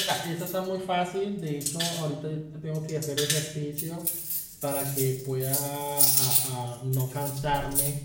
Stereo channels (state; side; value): identical; both; correlation 1.00